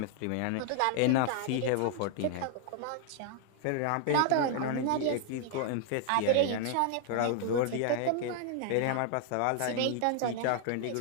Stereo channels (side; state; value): both; different; correlation 0.00